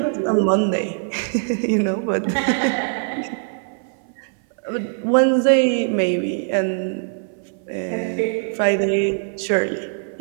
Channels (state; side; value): silent; left; 58 dB below the other